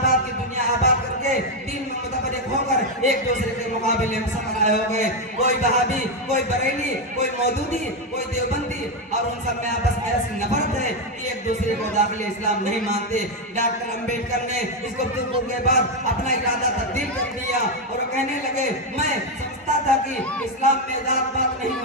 کی دنیا آباد کر کے دین میں متفرق ہو کر ایک دوسرے کے مقابلے میں سفر ہو گئے. کوئی وہابی، کوئی بریلی، کوئی مودودی، کوئی دیوبندی، اور ان سب میں آپس میں ایسی نفرت ہے کہ ایک دوسرے کو داخل اسلام نہیں مانتے. ڈاکٹر امبیڈکر نے اس گفتگو کے بعد اپنا ارادہ تبدیل کر دیا اور کہنے لگے: میں سمجھتا تھا کہ اسلام میں ذات پات نہیں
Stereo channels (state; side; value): normal; both; correlation 0.05